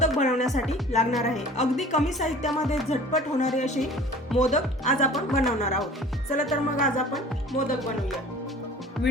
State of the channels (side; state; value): both; normal; correlation 0.45